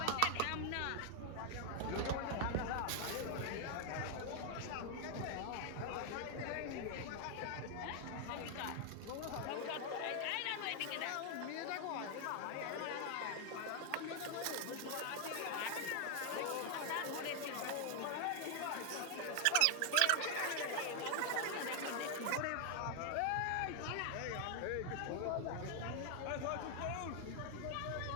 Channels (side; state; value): both; different; correlation 0.00